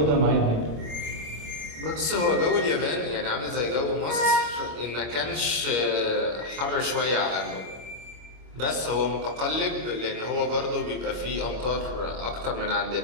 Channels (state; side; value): late; left; 26 ms